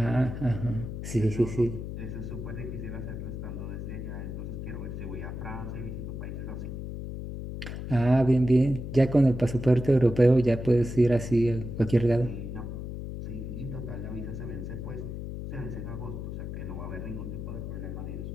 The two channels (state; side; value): noise; left; hum, 7 dB below the sound